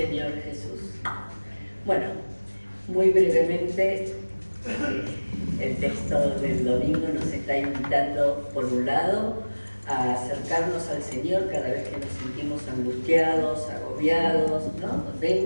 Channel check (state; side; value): inverted; both; correlation -1.00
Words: Jesús. Bueno, muy brevemente, el texto del domingo nos está invitando, por un lado, a acercarnos al Señor cada vez que nos sentimos angustiados, agobiados, ¿no?